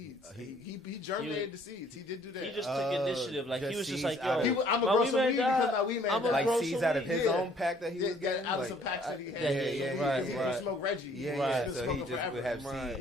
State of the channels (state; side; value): normal; both; correlation 0.60